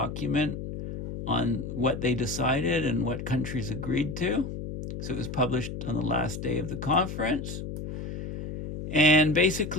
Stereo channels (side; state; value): left; noise; hum, 7 dB below the sound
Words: on what they decided and what countries agreed to. So it was published on the last day of the conference. And